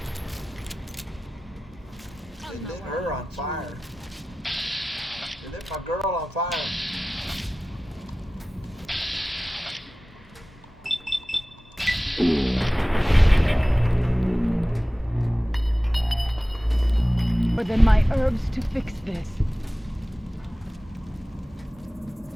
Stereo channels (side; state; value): both; normal; correlation 0.96